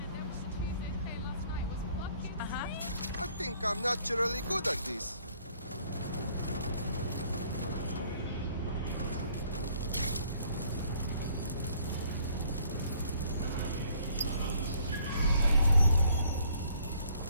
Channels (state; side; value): inverted; both; correlation -0.62